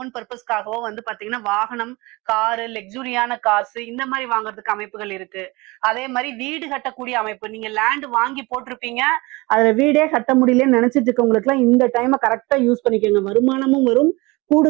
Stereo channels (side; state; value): left; quieter; 23.9 dB